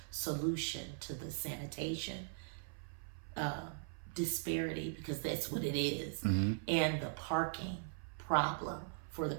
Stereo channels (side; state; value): left; silent; 51 dB below the other